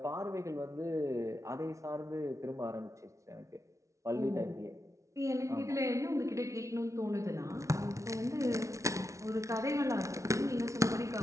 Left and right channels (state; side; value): late; left; 0.14 ms